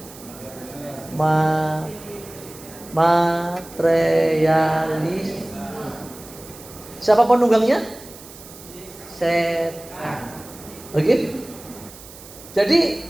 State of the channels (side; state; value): right; noise; hiss, 18 dB below the sound